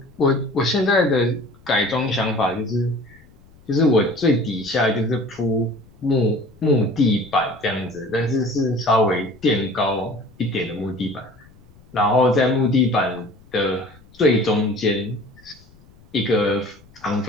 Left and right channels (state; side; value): noise; left; rumble, 27 dB below the sound